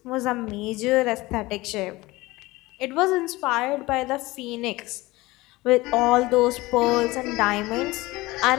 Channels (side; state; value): right; quieter; 20.4 dB